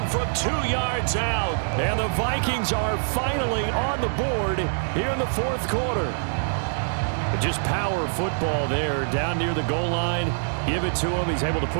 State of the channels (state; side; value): silent; left; digital silence